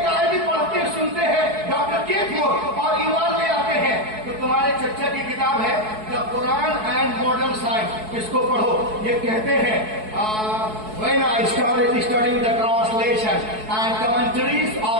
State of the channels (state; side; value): late; left; 4.6 ms